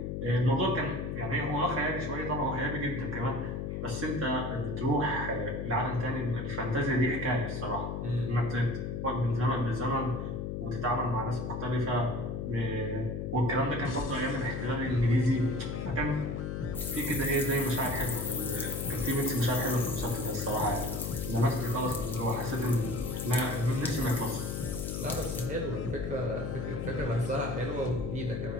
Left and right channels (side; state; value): left; noise; hum, 3 dB below the sound